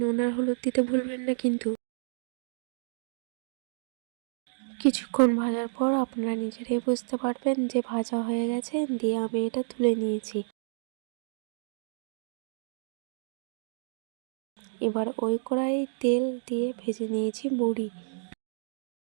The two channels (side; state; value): left; silent; digital silence